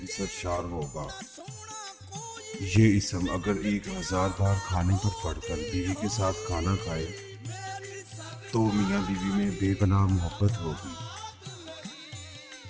سرشار ہوگا۔ یہ اسم اگر 1000 بار کھانے پر پڑھ کر بیوی کے ساتھ کھانا کھائے تو میاں بیوی میں بے پناہ محبت ہوگی،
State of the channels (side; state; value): both; identical; correlation 1.00